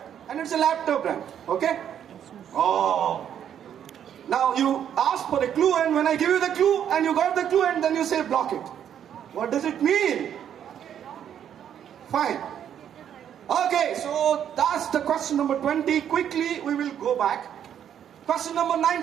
and it's a laptop brand. Okay? Oh. Now you ask for a clue, and when I give you the clue, and you got the clue, and then you say block it. What does it mean? Fine. Okay, so that's the question number 20. Quickly, we will go back. Question number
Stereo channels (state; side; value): quieter; left; 9.4 dB